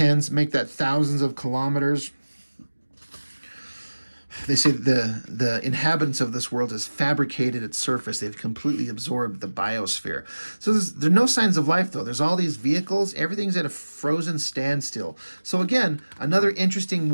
make that thousands of kilometers. They say the inhabitants of this world has fabricated its surface. They've completely absorbed the biosphere. So there are no signs of life, though. There's all these vehicles. Everything's at a frozen standstill. So again, another interesting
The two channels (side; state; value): both; inverted; correlation -1.00